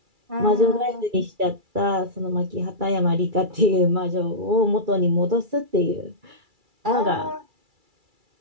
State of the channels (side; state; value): left; late; 2.3 ms